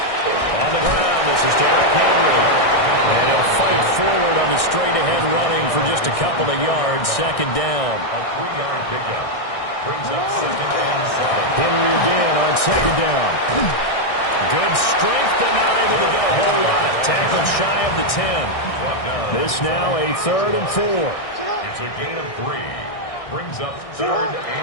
On the ground, this is Derrick Henry. And he'll fight forward on the straight-ahead running for just a couple of yards. 2nd down. A 3-yard pickup brings up 2nd and 7. Henry again on 2nd down. Good strength, but not able to get a whole lot. Tackled shy of the 10. This now a 3rd and 4. It's a gain of 3. Brings up 3rd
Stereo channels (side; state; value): right; late; 1.6 ms